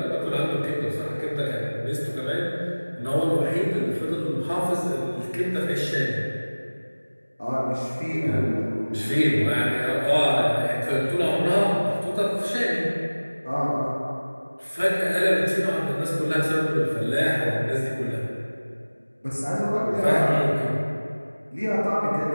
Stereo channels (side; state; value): both; inverted; correlation -1.00